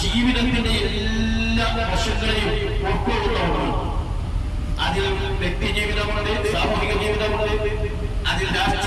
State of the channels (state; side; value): identical; both; correlation 1.00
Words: ജീവിതത്തിന്റെ എല്ലാ വശങ്ങളെയും ഉൾക്കൊള്ളുന്നതാണ്. അതിൽ വ്യക്തി ജീവിതമുണ്ട്, സാമൂഹിക ജീവിതമുണ്ട്, അതിൽ